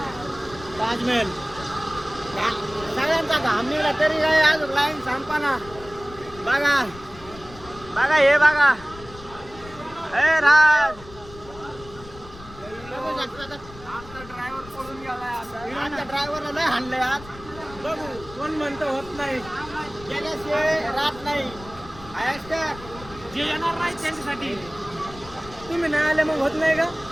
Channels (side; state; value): left; noise; rumble, 18 dB below the sound